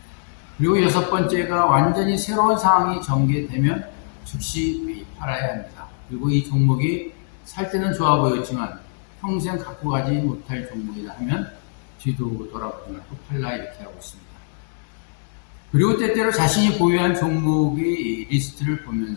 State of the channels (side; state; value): right; silent; digital silence